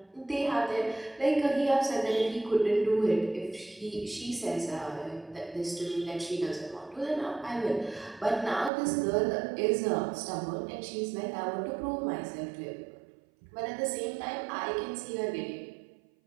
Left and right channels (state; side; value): drops out; left; at 8.7 s